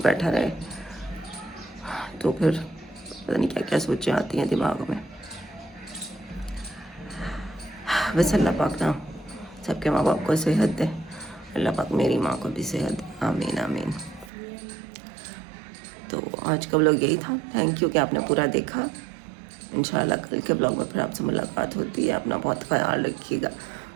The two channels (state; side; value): drops out; left; at 14.3 s